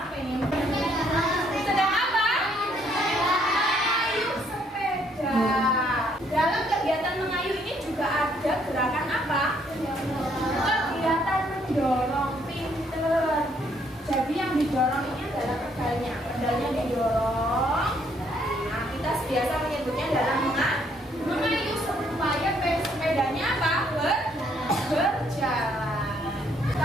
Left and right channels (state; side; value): normal; both; correlation 0.68